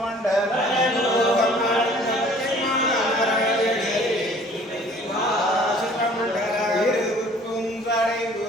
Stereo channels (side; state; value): both; normal; correlation 0.53